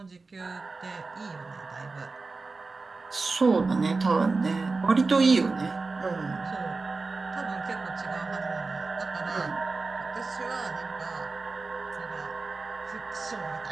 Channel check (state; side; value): quieter; left; 3.9 dB